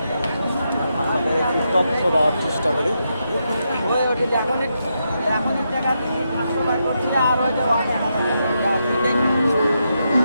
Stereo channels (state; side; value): inverted; both; correlation -0.83